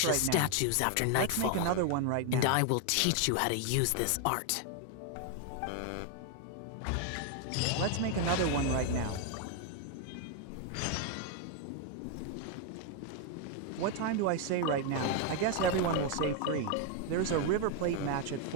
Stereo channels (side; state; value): both; different; correlation 0.01